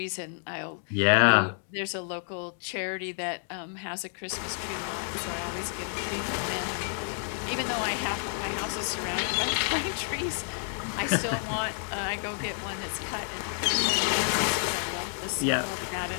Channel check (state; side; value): silent; right; 58 dB below the other